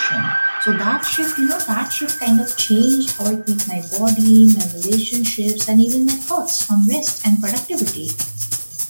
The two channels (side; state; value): both; inverted; correlation -1.00